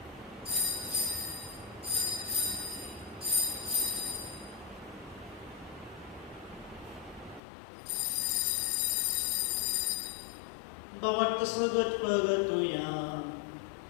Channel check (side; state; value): right; drops out; at 7.4 s